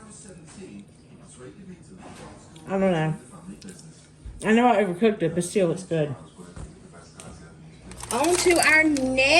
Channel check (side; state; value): both; identical; correlation 1.00